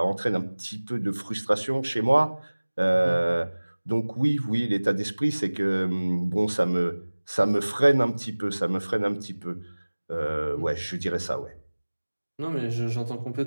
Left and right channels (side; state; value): both; inverted; correlation -1.00